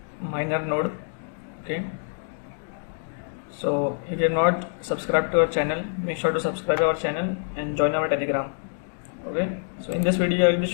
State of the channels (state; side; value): silent; right; digital silence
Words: miner node. Okay, so if you are not subscribed to our channel, make sure to subscribe our channel and join our Telegram. Okay, so in this video I will be